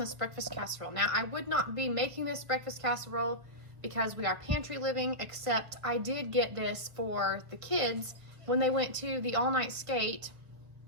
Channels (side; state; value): left; late; 1.3 ms